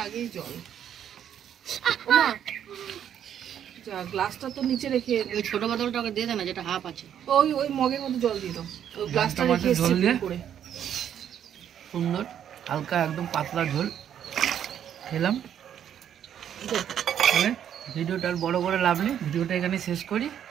আগেই জল। ওমা, যা গ্লাসটা তো নিচে রেখে ওই ছোট বোতলটা ওকে দিয়ে দে না, যেটা হাফ আছে। ওই মগের মধ্যে জল দিয়ে দাও। ওই গ্লাসটা মাছের রেখে ঝোল দিয়ে? করে। সুন্দর হালকা একদম পাতলা ঝোল খেলাম। তাহলে ভিডিওটা আর বড় করে লাভ নেই, ভিডিওটা এখানে শেষ করি।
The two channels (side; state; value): left; quieter; 9.6 dB